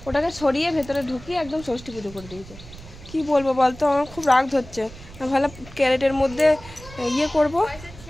ওটাকে সরিয়ে ভেতরে ঢুকিয়ে একদম ষষ্ঠী পুজো করে দিয়েছে। কি বলবো বলতো, আমার খুব রাগ ধরছে। আমি ভালো ক্যারেটের মধ্যে ইয়ে করবো।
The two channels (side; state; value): right; noise; rumble, 17 dB below the sound